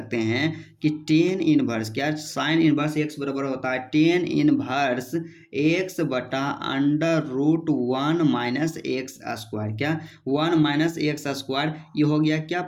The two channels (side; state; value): both; identical; correlation 1.00